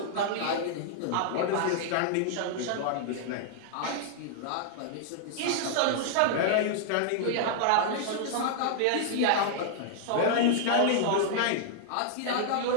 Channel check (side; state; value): both; different; correlation -0.01